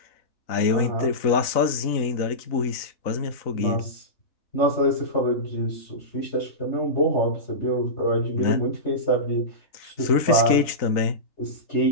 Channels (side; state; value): right; late; 3.9 ms